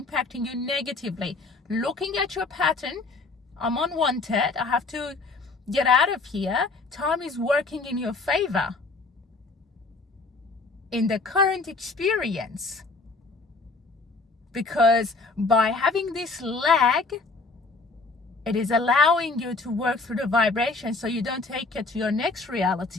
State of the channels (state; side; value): quieter; right; 3.8 dB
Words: you negatively. Looking at your pattern, I'm unwanted, I have to get out of here. Time is working in your favor in the current experience, because by having this lag, it is allowing you to work through the vibration so you don't take it to your next